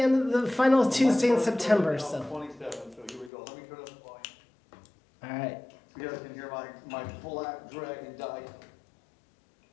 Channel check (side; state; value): right; drops out; at 3.3 s